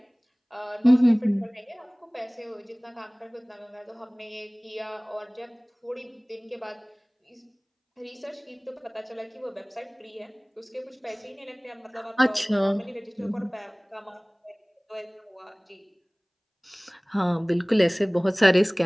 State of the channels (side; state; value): both; identical; correlation 1.00